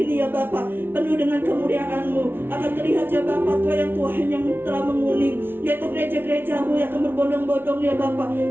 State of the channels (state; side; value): late; left; 0.11 ms